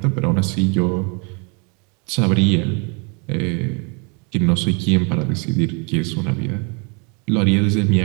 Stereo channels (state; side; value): quieter; left; 34.0 dB